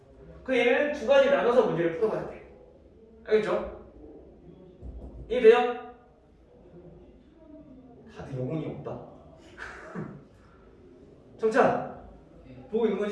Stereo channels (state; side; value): identical; both; correlation 1.00